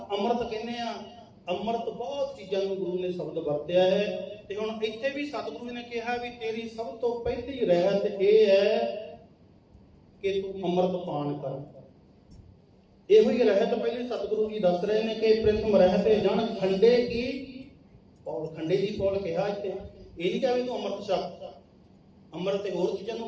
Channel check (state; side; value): identical; both; correlation 1.00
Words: ਅੰਮ੍ਰਿਤ ਕਹਿੰਦੇ ਆ। ਅੰਮ੍ਰਿਤ ਬਹੁਤ ਚੀਜ਼ਾਂ ਨੂੰ ਗੁਰੂ ਨੇ ਸ਼ਬਦ ਵਰਤਿਆ ਹੈ। ਤੇ ਹੁਣ ਇੱਥੇ ਵੀ ਸਤਿਗੁਰੂ ਨੇ ਕਿਹਾ ਵੀ ਤੇਰੀ ਸਭ ਤੋਂ ਪਹਿਲੀ ਰਹਿਤ ਇਹ ਹੈ ਕਿ ਤੂੰ ਅੰਮ੍ਰਿਤ ਪਾਨ ਕਰ। ਇਹੋ ਹੀ ਰਹਿਤ ਪਹਿਲੇ ਸਤਿਗੁਰੂ ਜੀ ਦੱਸ ਰਹੇ ਨੇ ਕਿ ਪ੍ਰਥਮ ਰਹਿਤ ਜਨ ਖੰਡੇ ਕੀ ਪੌਲ। ਖੰਡੇ ਦੀ ਪੌਲ ਕਿਹਾ ਇੱਥੇ। ਇਹ ਨਹੀਂ ਕਿਹਾ ਵੀ ਤੂੰ ਅੰਮ੍ਰਿਤ ਛਕ। ਅੰਮ੍ਰਿਤ ਤੇ ਹੋਰ ਚੀਜ਼ਾਂ